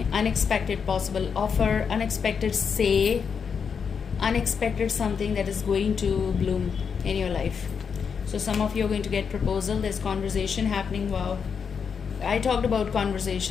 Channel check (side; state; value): right; quieter; 6.4 dB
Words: unexpected possible offer, unexpected say, unexpected something that is going to bloom in your life. So some of you are going to get proposal. There's conversation happening. Wow, I talked about